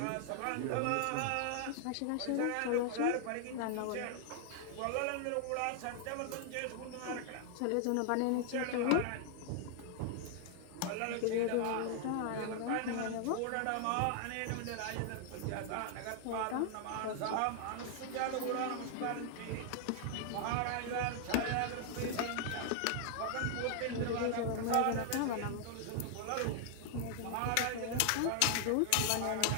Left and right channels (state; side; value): different; both; correlation 0.00